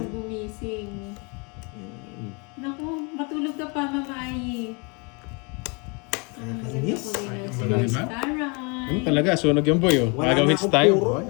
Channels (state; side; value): quieter; right; 32.1 dB